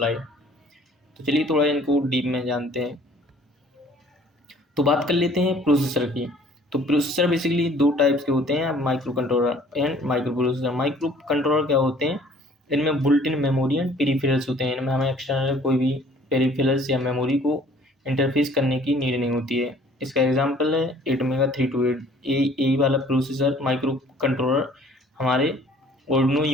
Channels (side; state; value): both; normal; correlation 0.54